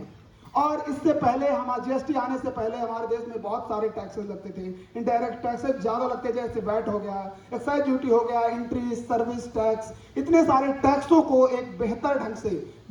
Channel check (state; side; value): identical; both; correlation 1.00